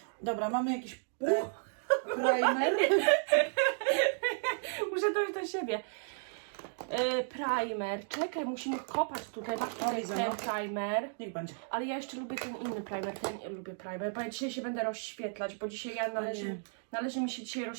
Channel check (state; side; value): silent; left; digital silence